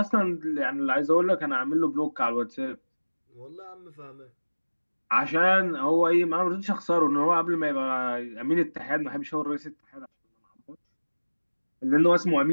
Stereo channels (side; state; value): both; inverted; correlation -1.00